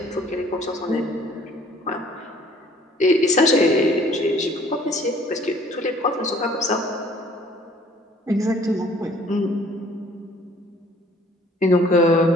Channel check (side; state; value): both; normal; correlation 0.56